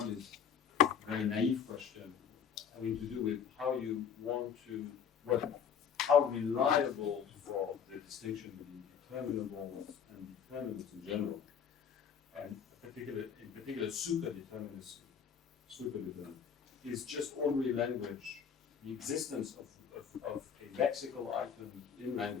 is a very naive question having to do with how you want to, how reliable for the distinction between determinables and determinants in general, and in particular superdeterminism, is just ordinary language, the existence of a lexical item in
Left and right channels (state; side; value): quieter; right; 7.5 dB